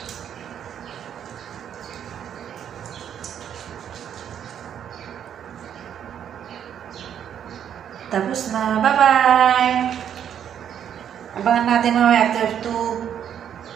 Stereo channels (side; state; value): left; quieter; 9.2 dB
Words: Tapos na. Bye-bye! Abangan natin mamaya after